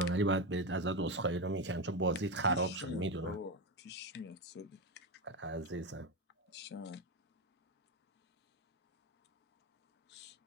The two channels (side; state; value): both; normal; correlation 0.14